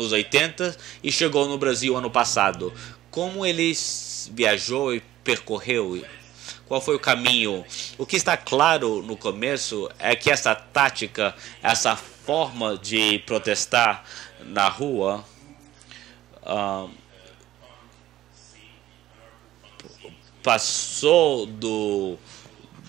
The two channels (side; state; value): left; quieter; 14.2 dB